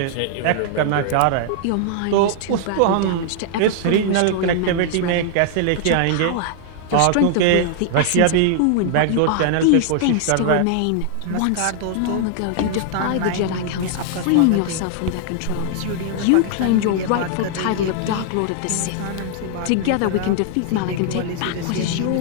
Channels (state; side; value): different; both; correlation 0.00